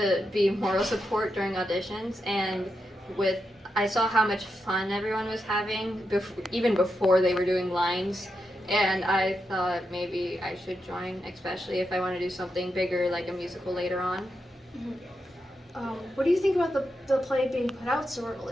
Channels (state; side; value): normal; both; correlation 0.85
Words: be moral support during auditions, and I saw how much fun everyone was having, even before they were doing lines, and I thought maybe I should join, especially if I want to do something bigger like a musical later on. What do you think about the play being put out so